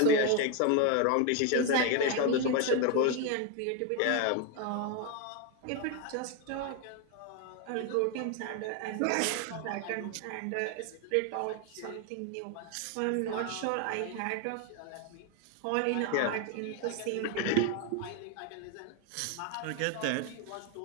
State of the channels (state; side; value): different; both; correlation 0.01